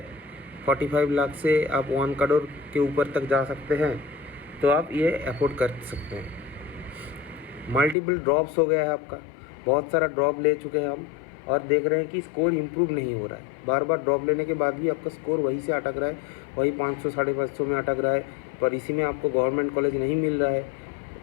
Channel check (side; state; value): right; drops out; at 8.0 s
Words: 45 लाख से आप 1 करोड़ के ऊपर तक जा सकते हैं तो आप ये अफोर्ड कर सकते हैं। मल्टीपल ड्रॉप्स हो गया है आपका, बहुत सारा ड्रॉप ले चुके हैं हम और देख रहे हैं कि स्कोर इम्प्रूव नहीं हो रहा है। बार बार ड्रॉप लेने के बाद भी आपका स्कोर वहीं से अटक रहा है, वही 500 550 में अटक रहा है। पर इसी में आपको गवर्नमेंट कॉलेज नहीं मिल रहा है,